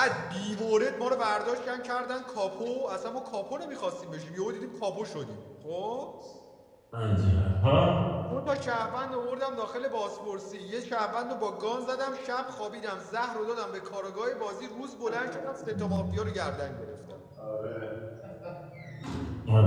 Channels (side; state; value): both; identical; correlation 1.00